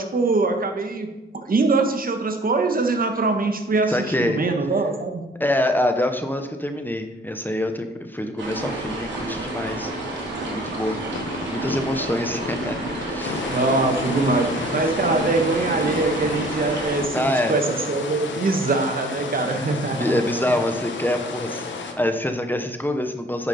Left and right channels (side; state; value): both; normal; correlation 0.52